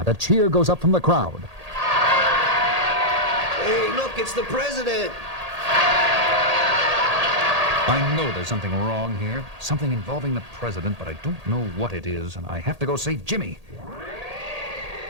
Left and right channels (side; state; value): left; late; 1.8 ms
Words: a cheer goes up from the crowd. Hey, look, it's the president. I know there's something wrong here. Something involving the president, but I don't know what it is, and I have to go save Jimmy.